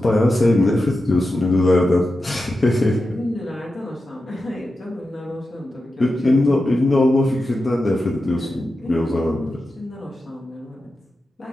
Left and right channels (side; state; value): both; normal; correlation 0.91